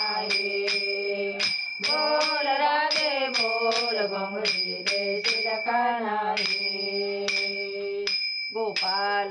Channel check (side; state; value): both; identical; correlation 1.00